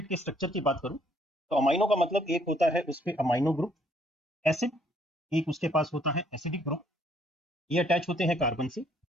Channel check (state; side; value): normal; both; correlation 0.66